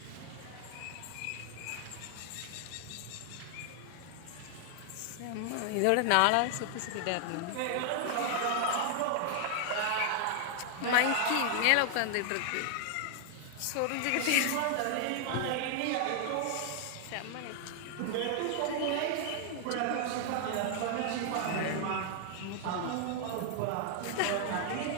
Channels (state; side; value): different; both; correlation 0.00